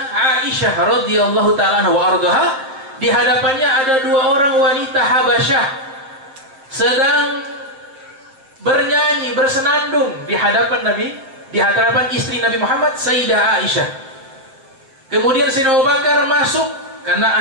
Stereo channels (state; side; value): late; left; 7.5 ms